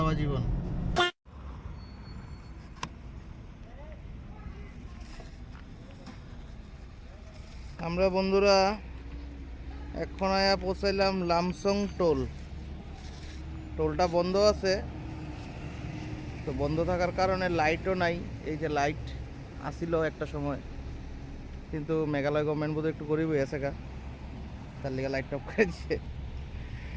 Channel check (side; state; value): both; identical; correlation 1.00